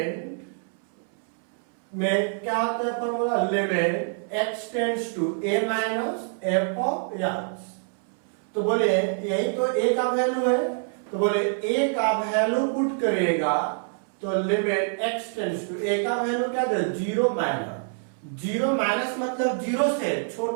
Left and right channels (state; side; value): silent; left; 61 dB below the other